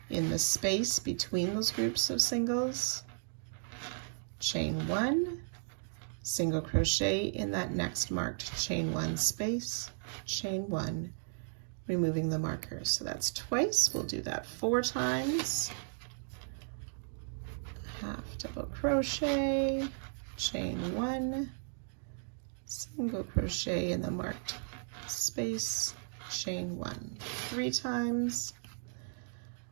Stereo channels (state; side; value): silent; left; digital silence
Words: in the space between those groups of singles, chain 1, single crochet in that next marked chain 1 space, chain 1, removing the marker. So that's twice. We'll do that 4 times. Half double crochet, chain 1, single crochet in the marked space, chain 1, 3 times,